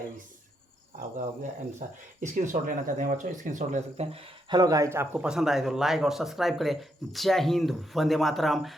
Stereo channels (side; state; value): both; normal; correlation 0.79